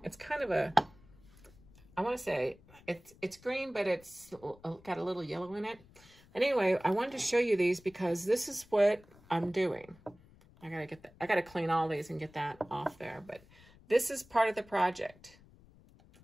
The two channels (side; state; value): left; noise; rumble, 25 dB below the sound